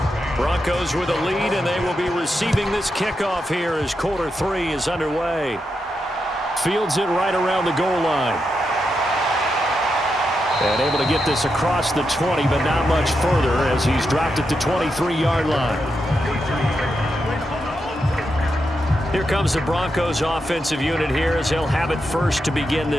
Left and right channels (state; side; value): normal; both; correlation 0.85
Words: Broncos with a lead, and they will be receiving this kickoff here as quarter 3 is underway. Fields it right around the goal line. And able to get this across the 20, but not much further as he's dropped it to 23-yard line. Here comes the Broncos offensive unit here as they'll have it first to begin